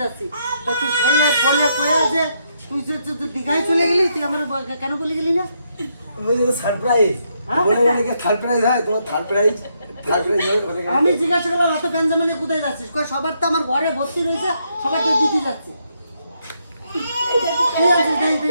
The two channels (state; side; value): inverted; both; correlation -0.77